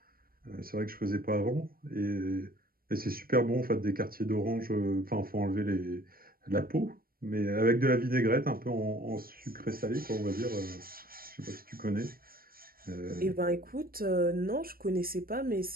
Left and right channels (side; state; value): left; late; 0.43 ms